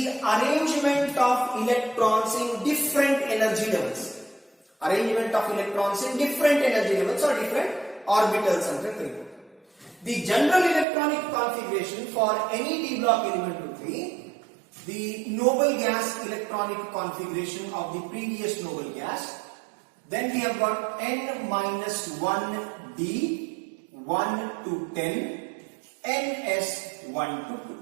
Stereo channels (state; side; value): drops out; left; at 10.9 s